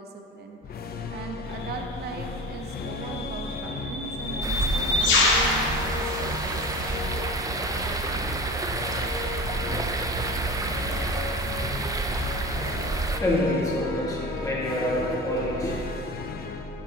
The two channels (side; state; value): both; normal; correlation 0.33